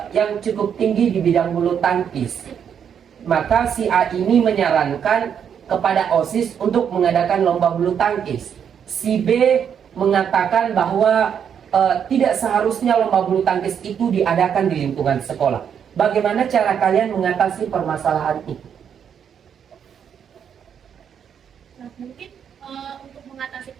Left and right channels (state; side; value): quieter; left; 8.0 dB